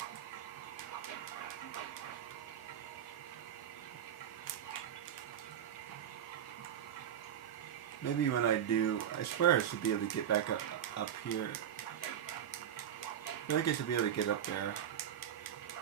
Maybe when I do, I swear I should be able to get back up here. I feel like I should be able to get up there.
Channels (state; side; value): quieter; left; 9.7 dB